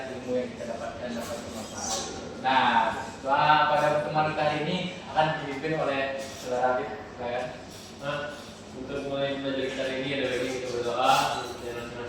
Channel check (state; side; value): identical; both; correlation 1.00